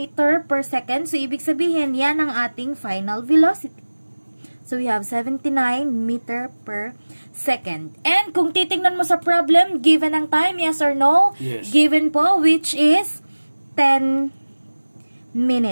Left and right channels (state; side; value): inverted; both; correlation -1.00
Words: per second, so ibig sabihin yan ang ating final velocity. So we have 79 meter per second. And kung titingnan mo sa problem, given ang time, yes or no? Yes. Given po, which is 10